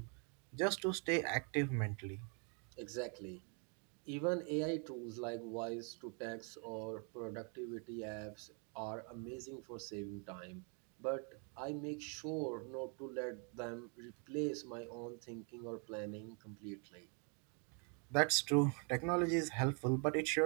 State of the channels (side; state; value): left; quieter; 38.1 dB